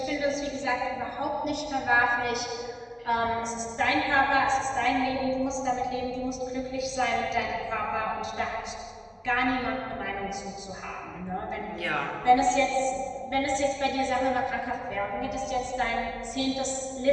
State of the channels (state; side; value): identical; both; correlation 1.00